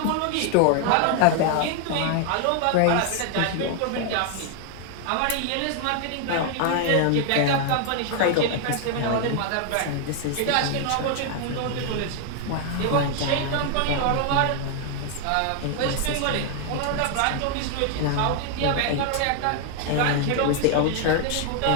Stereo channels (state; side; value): different; both; correlation 0.00